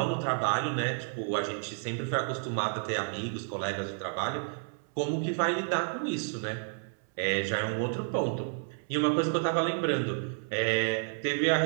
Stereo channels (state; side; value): silent; left; 57 dB below the other